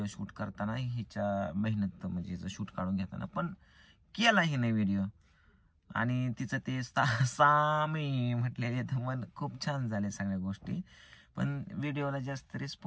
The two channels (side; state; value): both; identical; correlation 1.00